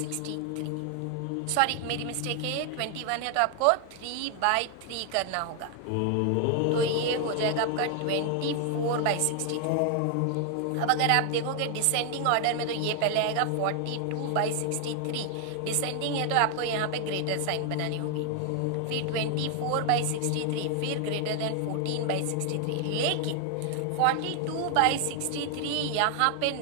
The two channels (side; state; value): both; different; correlation 0.00